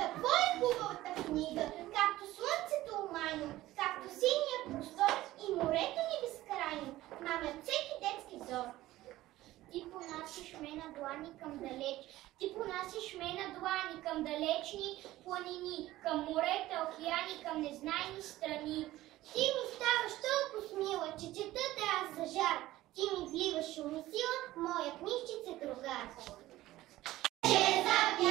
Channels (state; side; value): quieter; left; 16.1 dB